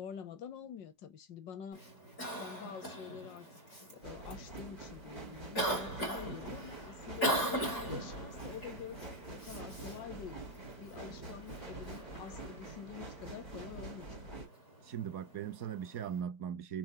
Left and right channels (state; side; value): late; right; 4.7 ms